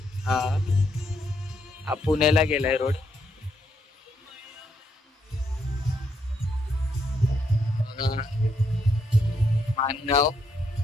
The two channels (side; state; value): both; normal; correlation 0.76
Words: हा पुण्याला गेलाय रोड बघा. मानगाव.